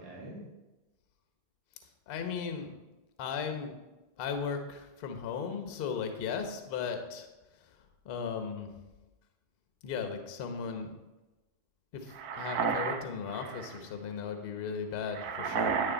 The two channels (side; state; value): right; late; 2.7 ms